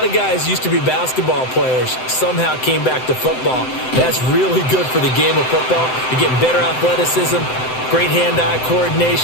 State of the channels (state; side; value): late; right; 7.8 ms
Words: of guys used to be basketball players, somehow came back to football. That's really good for the game of football. You're getting better athleticism, great hand-eye